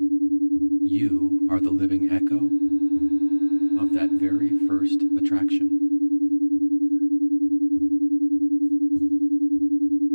You are the living echo of that very first attraction.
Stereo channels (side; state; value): both; inverted; correlation -1.00